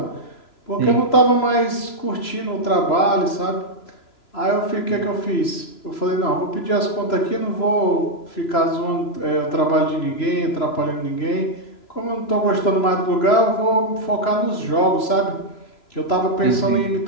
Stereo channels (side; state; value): right; late; 3.0 ms